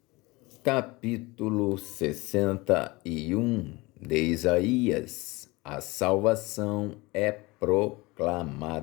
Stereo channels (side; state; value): right; quieter; 23.1 dB